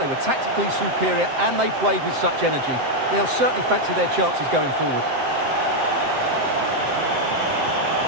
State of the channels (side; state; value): left; late; 7.7 ms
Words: were tactically superior, and they played with such energy. They'll certainly fancy their chances going forward.